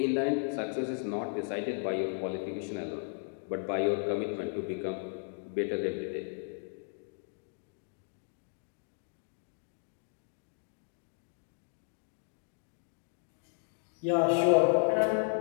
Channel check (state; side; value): silent; right; 55 dB below the other